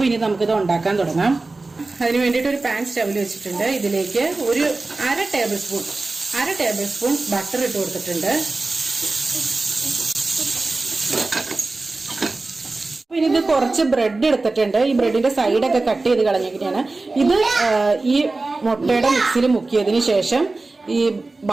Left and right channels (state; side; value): quieter; left; 3.4 dB